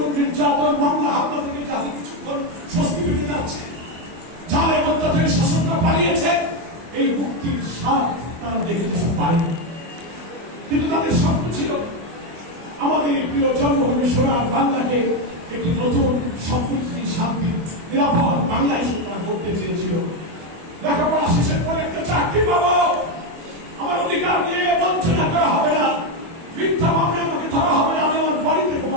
নির্যাতন, মামলা হামলা থেকে যাদের কিছুক্ষণ স্বস্তি পেতে যাচ্ছে, জালের অত্যাচারী শাসনটা পালিয়েছে, এই মুক্তির স্বাদ তারা দেখে যেতে পারে। কিন্তু তাদের স্বপ্ন ছিল আমাদের প্রিয় জন্মভূমি সোনার বাংলাকে একটি নতুন সমৃদ্ধি, শান্তি, নিরাপদ বাংলাদেশ করতে চেয়েছিল। লেখাপড়া অধিকার দিয়ে বঞ্চনা করা হবে না, মিথ্যা মামলা আমাকে ধরা হবে না, আমি আমার বাড়িতে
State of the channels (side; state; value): left; late; 24 ms